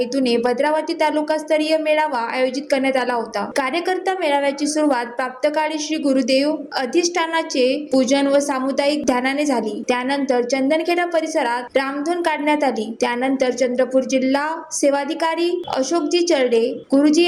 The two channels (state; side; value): identical; both; correlation 1.00